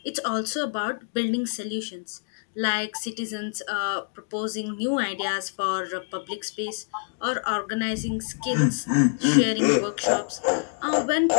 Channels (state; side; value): silent; right; digital silence